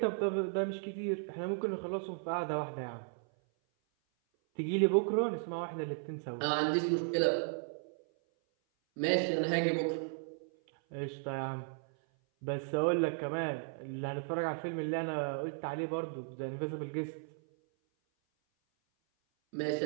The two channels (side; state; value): left; silent; 54 dB below the other